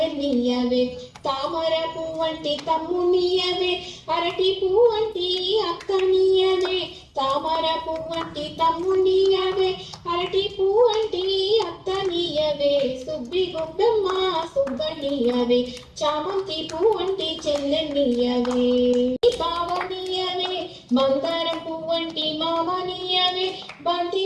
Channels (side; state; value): both; identical; correlation 1.00